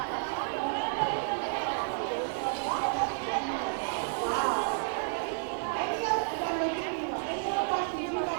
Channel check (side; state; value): left; silent; digital silence